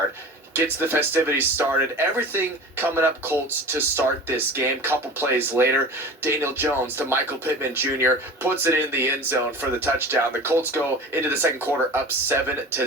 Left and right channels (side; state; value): both; normal; correlation 0.37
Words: Gets the festivities started. Everything coming up Colts to start this game. Couple plays later, Daniel Jones to Michael Pittman Jr. puts it in the end zone for the touchdown. The Colts go into the second quarter up